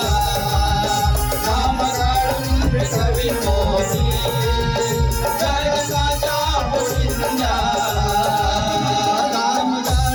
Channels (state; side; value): identical; both; correlation 1.00